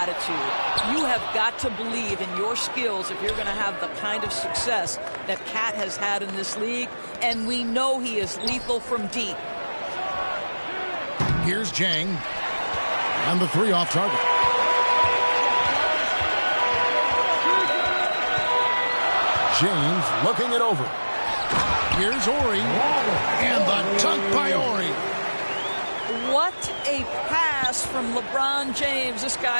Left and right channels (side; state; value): both; inverted; correlation -1.00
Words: You have got to believe in your skills if you're going to have the kind of success that Cat has had in this league, and we know he is lethal from deep. Here's Jang, and the three off target. James looking it over. Here's Ori. And the dunk by Ori. What a pass from LeBron James. This